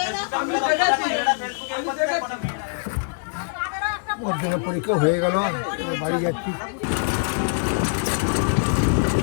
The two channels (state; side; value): silent; right; 63 dB below the other